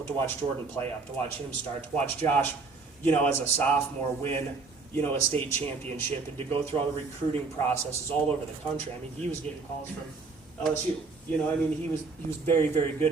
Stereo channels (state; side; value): quieter; left; 4.2 dB